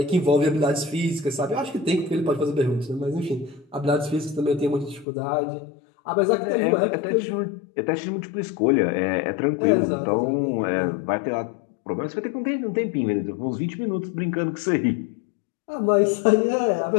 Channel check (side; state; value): right; drops out; at 5.1 s